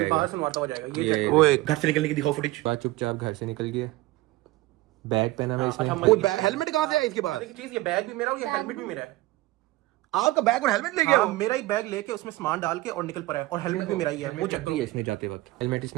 बाहर से मारता हो जाएगा ये। ये ओए घर से निकलने की दिखाओ फुटेज। बात चुपचाप घर से निकल गया, बैग पहना हुआ इसने। हेलमेट कहाँ से आया इसके पास? चीज, ये बैग भी मेरा और ये हेलमेट भी मेरा है। आपका बैग और हेलमेट ले गया? हाँ, मेरा ही बैग लेके उसमें सामान डाल के और निकल पड़ा है, और हेलमेट भी मेरा ही है। वो चक दिया इसने जाते वक्त, हेलमेट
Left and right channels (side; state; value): left; quieter; 18.7 dB